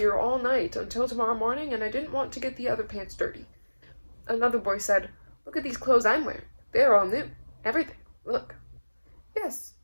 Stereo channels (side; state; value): both; inverted; correlation -1.00